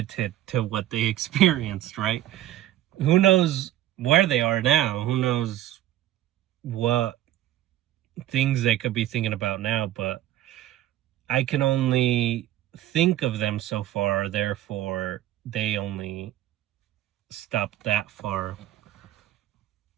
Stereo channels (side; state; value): left; quieter; 13.6 dB